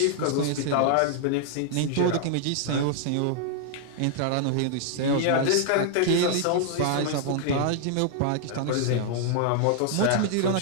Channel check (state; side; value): different; both; correlation 0.00